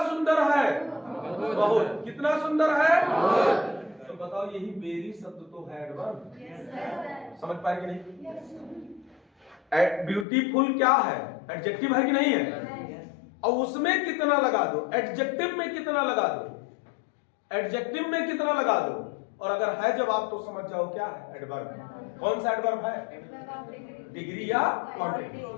सुंदर है? बहुत। कितना सुंदर है? बहुत। तो बताओ यही वेरी शब्द तो है एडवर्ब। समझ पाए कि नहीं? ब्यूटीफुल क्या है? एडजेक्टिव है कि नहीं है? और उसमें कितना लगा दो, एडजेक्टिव में कितना लगा दो, एडजेक्टिव में कितना लगा दो, और अगर है जवाब तो समझ जाओ क्या है एडवर्ब। कौन सा एडवर्ब है? डिग्री या क्वांटिटी।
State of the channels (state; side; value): drops out; right; at 10.2 s